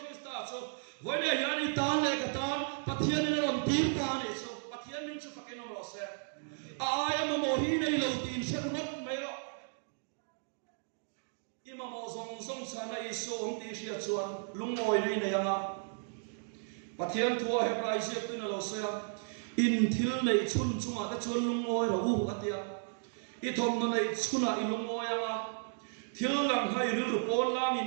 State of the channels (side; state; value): left; silent; digital silence